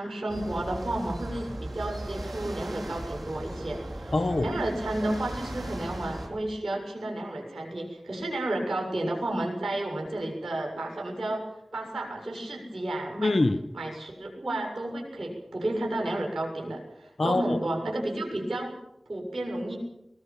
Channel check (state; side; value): normal; both; correlation 0.94